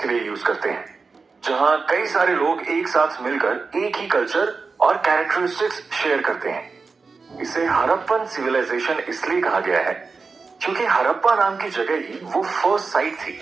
लिए यूज करते हैं, जहां कई सारे लोग एक साथ मिलकर एक ही कल्चर और कैरेक्टरिस्टिक्स शेयर करते हैं। इसे हड़प्पन सिविलाइजेशन इसलिए कहा गया है क्योंकि हड़प्पा नाम की जगह ही वो फर्स्ट साइट थी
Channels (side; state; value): left; quieter; 4.5 dB